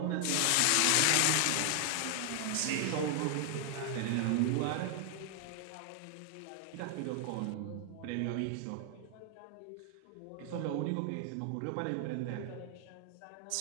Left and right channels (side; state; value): both; different; correlation 0.00